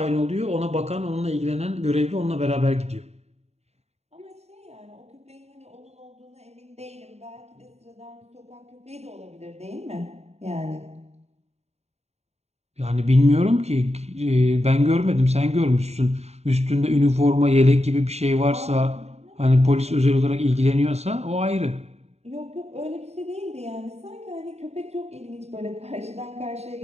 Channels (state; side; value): late; left; 0.31 ms